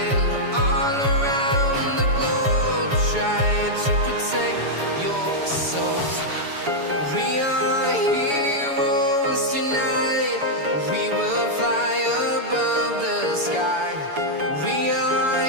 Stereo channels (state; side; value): late; left; 7.0 ms